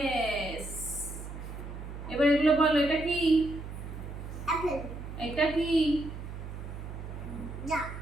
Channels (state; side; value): noise; right; hum, 9 dB below the sound